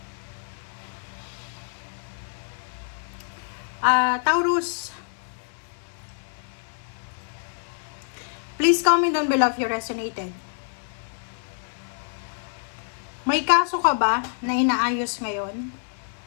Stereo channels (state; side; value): silent; right; 60 dB below the other